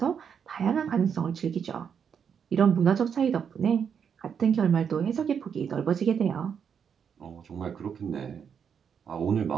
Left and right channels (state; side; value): quieter; left; 7.3 dB